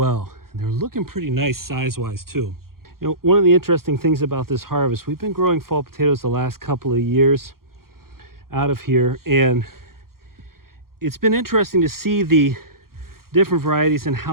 And they're looking pretty nice size-wise too. You know, one of the interesting things about this harvest, we've been growing fall potatoes the last couple of years out of here, and it's been interesting to see the different varieties and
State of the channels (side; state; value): left; late; 0.92 ms